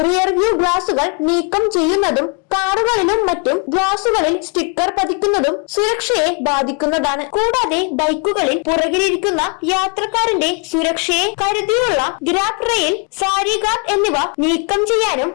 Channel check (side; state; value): right; quieter; 35.5 dB